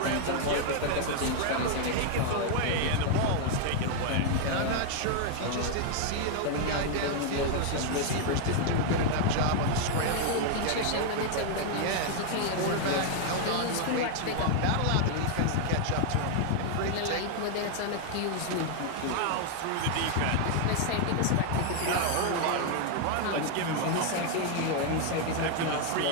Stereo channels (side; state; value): both; different; correlation 0.00